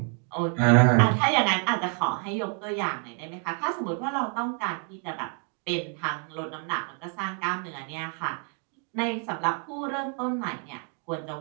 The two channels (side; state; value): left; quieter; 39.6 dB